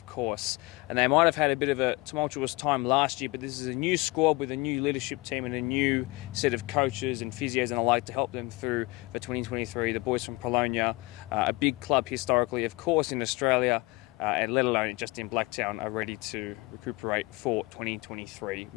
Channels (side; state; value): right; quieter; 22.6 dB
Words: course. And they might have had a bit of a tumultuous time last year, but this is a new squad with a new leadership team and a new set of coaches and physios and the like to help them through for 2023. The boys from Polonia, a big club historically, of course, in Australia, and let alone just in Blacktown, are ready to recuperate for 2023.